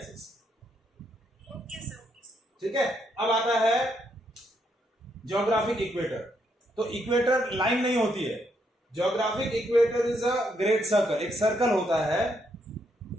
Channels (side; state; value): both; normal; correlation 0.76